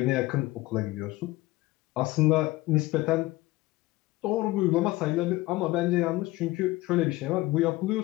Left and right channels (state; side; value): quieter; right; 19.0 dB